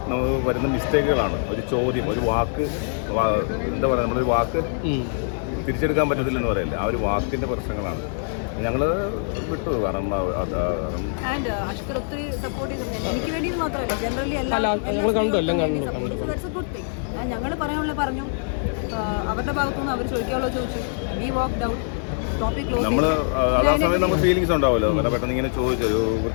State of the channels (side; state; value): right; silent; digital silence